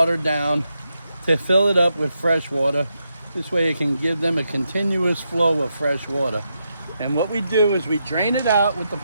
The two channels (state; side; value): inverted; both; correlation -0.84